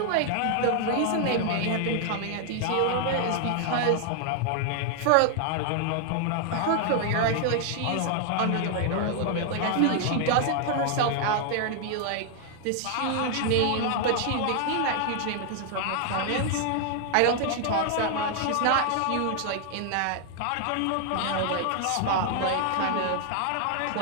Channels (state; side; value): different; both; correlation 0.00